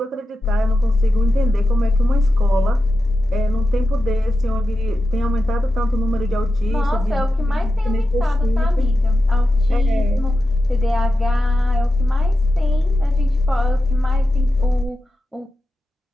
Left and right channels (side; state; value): both; normal; correlation 0.90